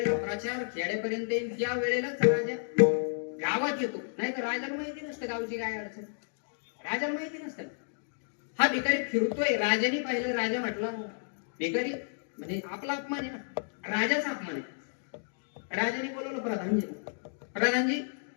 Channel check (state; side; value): silent; right; digital silence